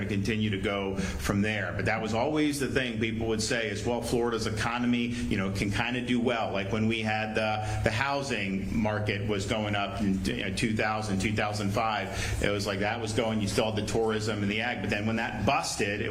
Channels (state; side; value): identical; both; correlation 1.00